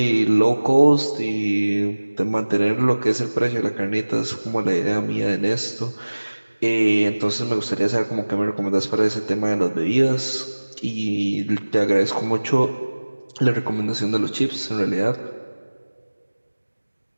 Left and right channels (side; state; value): both; inverted; correlation -1.00